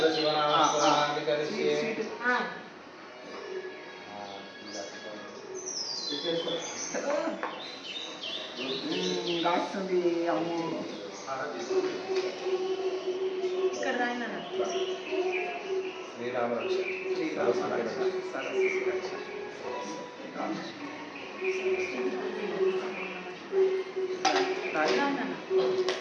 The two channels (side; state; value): both; identical; correlation 1.00